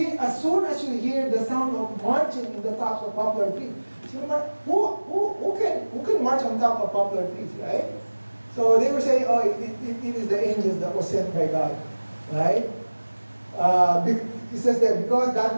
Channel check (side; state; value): both; inverted; correlation -1.00